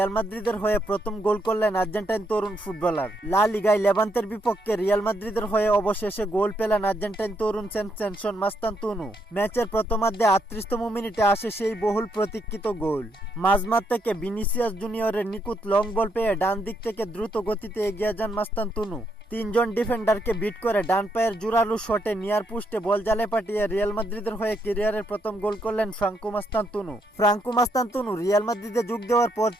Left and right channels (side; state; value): both; normal; correlation 0.77